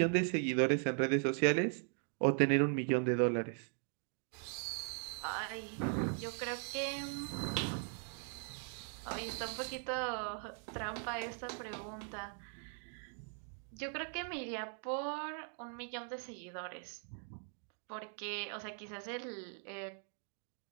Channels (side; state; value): left; silent; 51 dB below the other